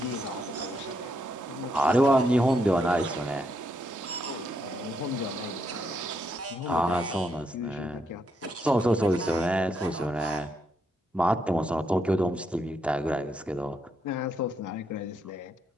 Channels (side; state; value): both; normal; correlation 0.78